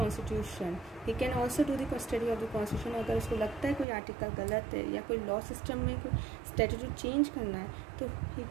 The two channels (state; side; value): drops out; left; at 3.9 s